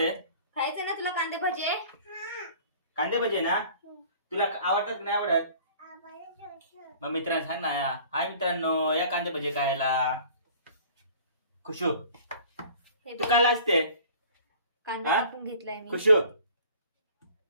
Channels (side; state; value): both; inverted; correlation -0.48